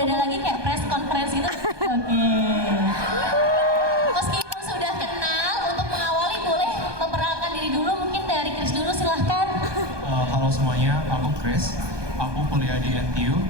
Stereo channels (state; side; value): late; left; 1.2 ms